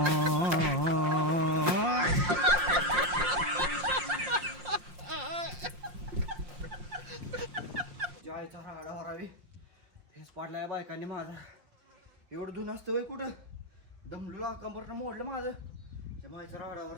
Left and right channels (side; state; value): left; late; 5.6 ms